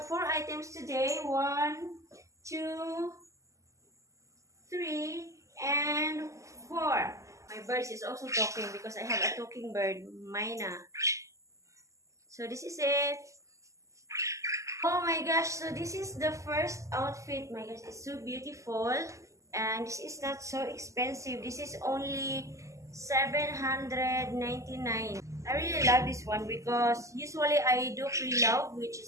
4 items today. 1, 2, 3, and 4. My bird is also talking because I have a talking bird, Mina. So this is it. Oh my gosh, so this is the first outfit. My gosh, it's so beautiful. And this is not so expensive. This is only 799. I really love this one because usually I do pre-love, which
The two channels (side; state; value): left; late; 0.15 ms